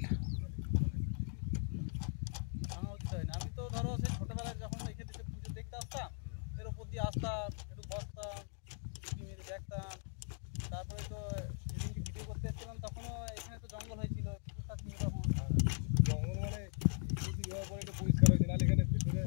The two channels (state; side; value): silent; right; 52 dB below the other